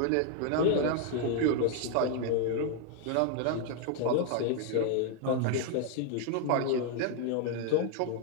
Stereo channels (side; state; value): both; different; correlation 0.00